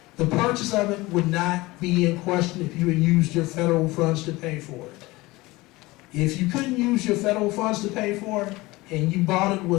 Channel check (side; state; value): right; quieter; 20.9 dB